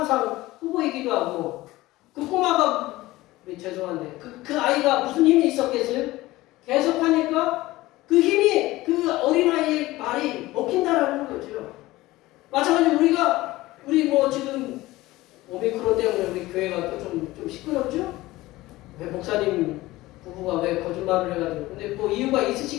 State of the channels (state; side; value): quieter; right; 18.3 dB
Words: 후보이기도 하고 그 꼬마가 죄송한데 그 아이가 무슨 힘이 있었겠어요? 계속 하니까 그 힘이 그 어린아이의 말이 먹힌다라는 거죠. 마찬가지로 우리 지금 오미크론 때문에 우리 교회가 또 좀 시끄럽죠? 왜 목사님 부부가 왜 거짓말을 해가지고 근데 이유가